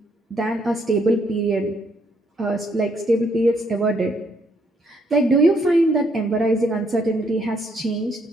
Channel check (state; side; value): normal; both; correlation 0.71